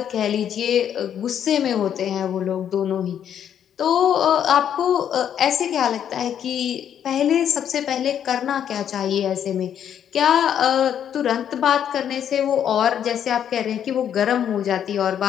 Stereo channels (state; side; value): quieter; right; 9.3 dB